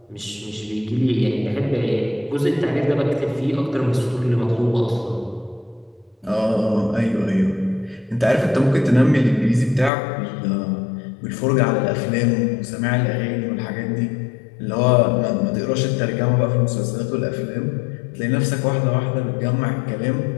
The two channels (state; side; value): drops out; right; at 9.9 s